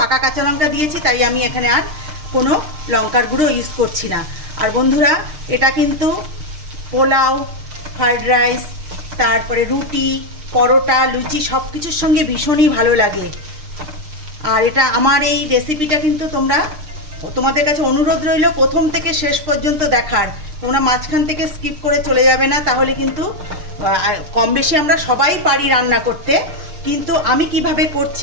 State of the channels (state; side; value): late; left; 6.6 ms